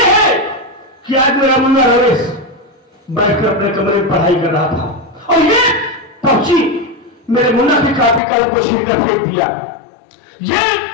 है कि आज मेरा मुन्ना रमेश बैठकर अपने कमरे में पढ़ाई कर रहा था और ये पहुंची मेरे मुन्ना की कॉपी कलम को छीन कर फेंक दिया। ये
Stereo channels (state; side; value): drops out; right; at 8.2 s